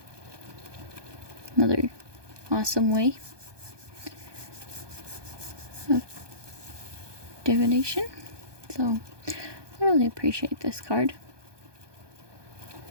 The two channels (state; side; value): late; left; 1.2 ms